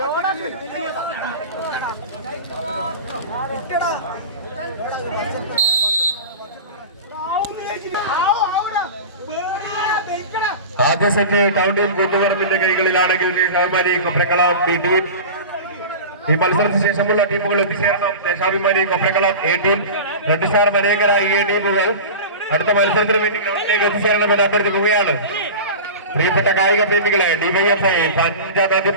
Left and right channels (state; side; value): inverted; both; correlation -0.31